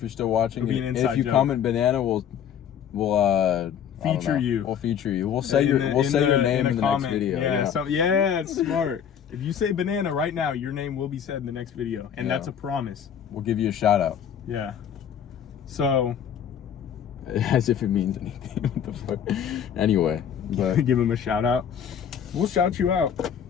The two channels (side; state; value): right; quieter; 8.5 dB